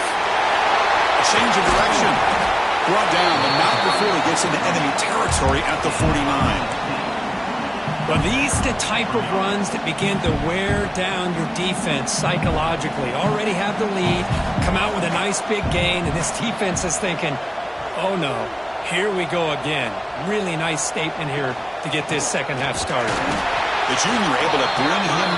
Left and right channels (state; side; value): identical; both; correlation 1.00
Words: A change of direction. Brought down, but not before he gets into enemy territory at the 49. Well, these are the type of runs that begin to wear down your defense psychologically. Already have the lead, come out with a nice big gain, and this defense is thinking, oh no, here we go again. Really nice statement here to get this second half started. The junior able to bring him